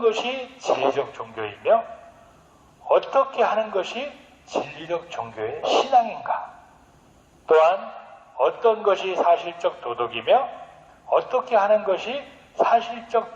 진리적 종교이며 어떻게 하는 것이 진리적 종교의 신앙인가? 또한 어떤 것이 사실적 도덕이며 어떻게 하는 것이 사실적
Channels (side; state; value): both; identical; correlation 1.00